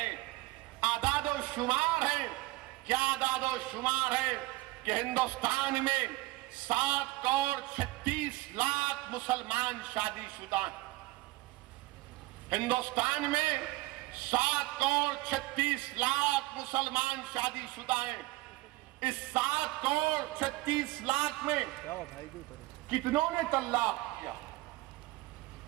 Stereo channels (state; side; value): quieter; left; 20.1 dB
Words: اعداد و شمار ہیں۔ کیا اعداد و شمار ہے کہ ہندوستان میں 7 کروڑ 36 لاکھ مسلمان شادی شدہ ہیں۔ ہندوستان میں 7 کروڑ 36 لاکھ مسلمان شادی شدہ ہیں۔ اس 7 کروڑ 36 لاکھ میں کتنوں نے طلاق کیا؟